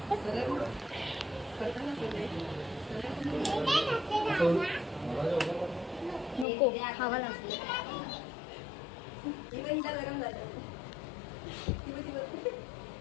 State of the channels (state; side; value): drops out; right; at 6.5 s